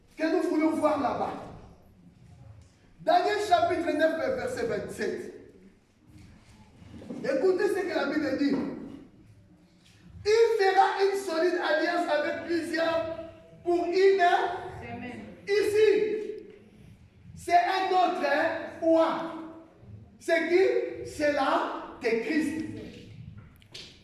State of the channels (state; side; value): identical; both; correlation 1.00